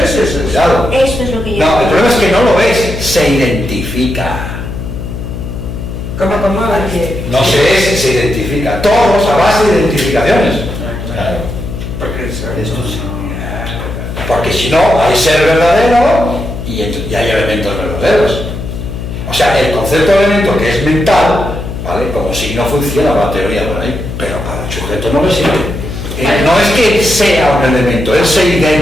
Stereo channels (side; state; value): left; noise; hum, 7 dB below the sound